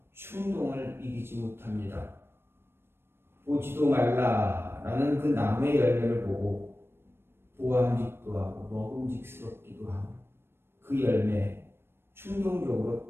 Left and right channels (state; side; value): late; left; 0.12 ms